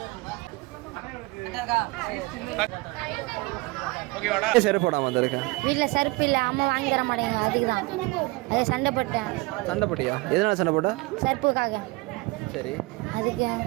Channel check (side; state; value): left; quieter; 23.0 dB